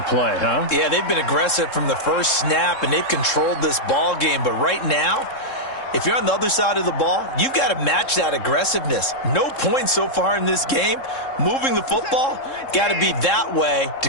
play, huh? Yeah, they've been aggressive from the first snap, and they've controlled this ball game. But right now, if you're on the other side of the ball, you've got to match that aggressiveness. No points so far in this game. Moving the football, got to be that way to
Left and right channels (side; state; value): right; late; 3.7 ms